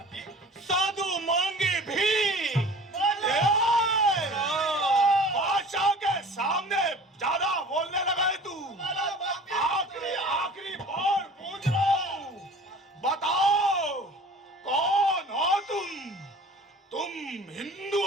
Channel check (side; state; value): both; normal; correlation 0.43